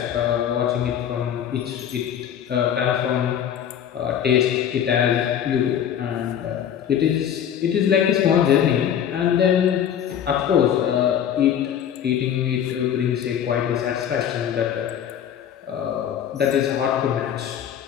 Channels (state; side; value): quieter; right; 9.3 dB